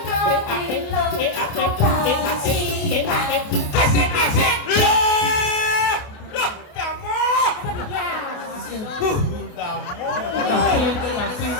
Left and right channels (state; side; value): late; right; 28 ms